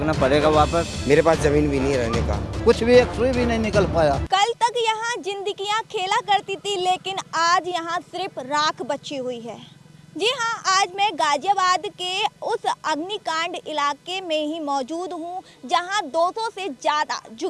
पड़ेगा वापस। मेरे पास जमीन भी नहीं रहने का, कुछ भी एक सुई भी नहीं निकल पाया। कल तक यहाँ जिंदगियां खेला करती थी, लेकिन आज यहाँ सिर्फ राख बची हुई है। जी हाँ, आज मैं गाजियाबाद के उस अग्निकांड इलाके में ही मौजूद हूँ, जहाँ 200 से ज़्यादा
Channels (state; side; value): identical; both; correlation 1.00